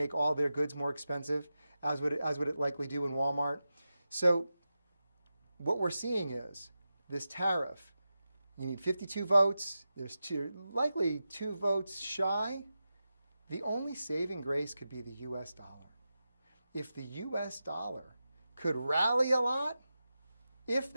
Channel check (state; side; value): inverted; both; correlation -0.92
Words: all their goods more expensive, as would it likely do in Walmart. So what we're seeing is this tariff. You need 52 votes. There's likely 2 votes shy. The only saving grace could be the U.S. dollar. If the U.S. dollar could rally a lot, if